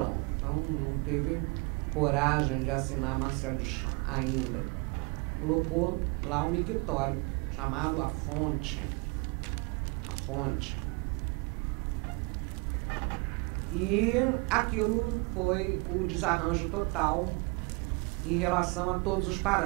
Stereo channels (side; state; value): left; quieter; 29.4 dB